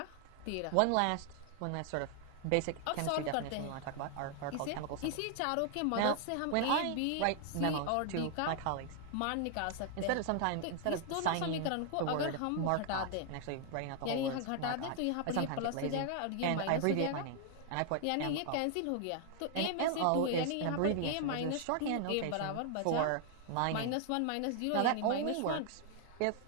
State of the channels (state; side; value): different; both; correlation 0.00